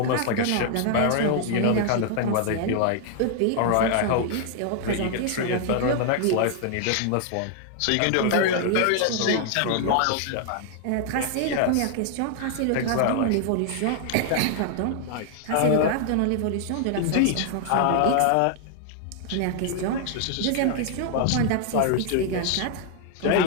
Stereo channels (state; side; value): different; both; correlation 0.00